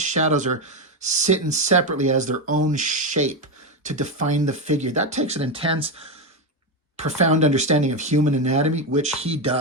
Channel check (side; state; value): both; normal; correlation 0.10